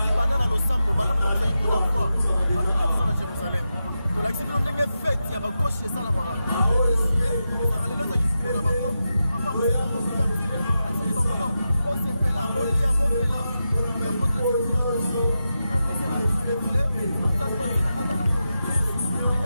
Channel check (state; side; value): inverted; both; correlation -0.89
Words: banane à l'ensemble, le banane comme ça il faut la fois. À Jérusalem. Donc l'accident n'est fait, il y a ma gauche et ça la mara. Et ça allait là ça qui faut la bango. Papa on est en train de faire. Ainsi bon non. On s'est fait là, on y a bon là. Il y a pas de donc ça doit être à la